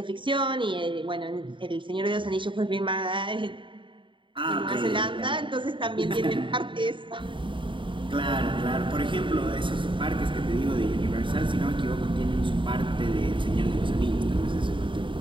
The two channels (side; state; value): left; late; 0.24 ms